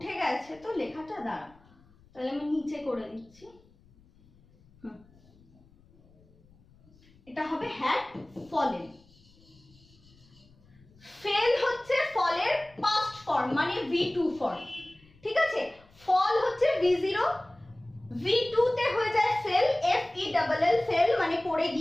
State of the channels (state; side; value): noise; left; rumble, 28 dB below the sound